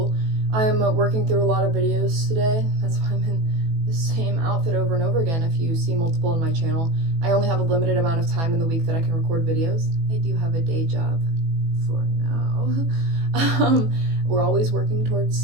I'm working through a lot of videos today. That's why I'm in the same outfit over and over again. If you see multiple on my channel, I only have a limited amount of time in the week that I can record videos. I do have a day job for now. We're always working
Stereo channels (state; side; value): late; left; 18 ms